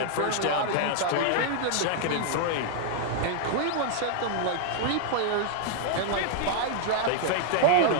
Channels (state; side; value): different; both; correlation -0.01